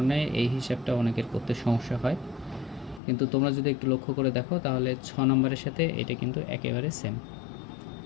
এই হিসাবটা অনেকের করতে সমস্যা হয়, কিন্তু তোমরা যদি একটু লক্ষ্য করে দেখো তাহলে 6 নম্বরের সাথে এটা কিন্তু একেবারে সেম,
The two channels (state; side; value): drops out; right; at 3.0 s